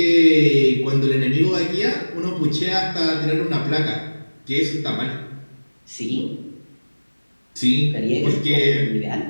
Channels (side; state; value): both; inverted; correlation -1.00